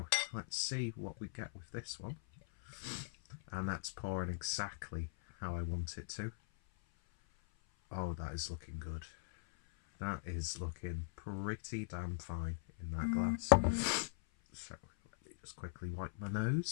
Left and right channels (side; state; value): right; silent; 51 dB below the other